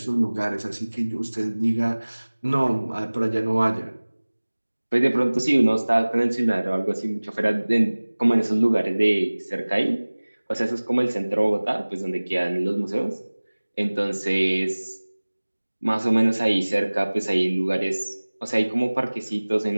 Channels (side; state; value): both; inverted; correlation -1.00